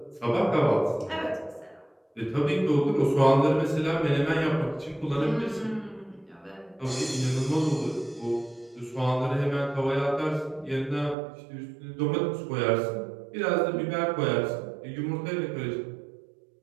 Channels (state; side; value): drops out; left; at 11.2 s